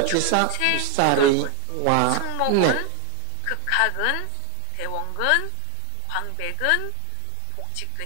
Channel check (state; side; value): different; both; correlation 0.01